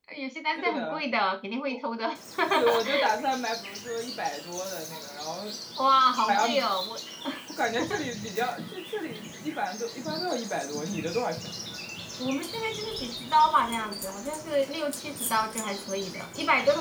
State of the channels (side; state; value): both; identical; correlation 1.00